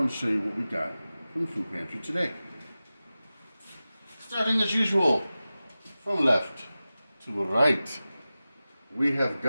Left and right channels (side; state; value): both; inverted; correlation -0.95